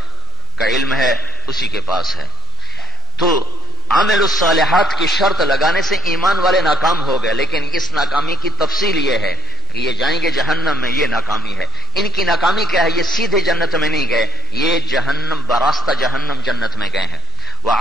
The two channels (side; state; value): both; normal; correlation 0.39